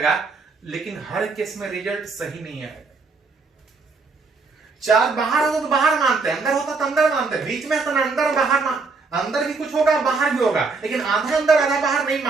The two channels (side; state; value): left; quieter; 4.2 dB